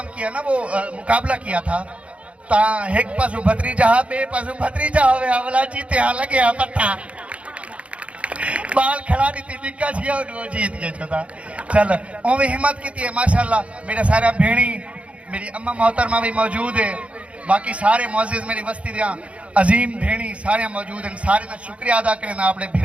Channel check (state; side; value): late; left; 0.062 ms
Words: किया ना, वो मुकाबला किया था, ता एक पासू भत्रीजा बे पासू भत्रीजा होवे अवला जीते हाँ लगे हाँ पत्ता बाल खड़ा नहीं थी निक्का छिया वो जीत गए छोटा। चल ओवे हिम्मत की थी माशाल्लाह। मेरा सारा भेणी, मेरी अम्मा मोहतरमा भी मौजूद है, बाकी सारे मौजिज मेरी बस्ती दिया अजीम भेणी सारे मौजूद हैं। सारे का शुक्रिया अदा करना अपने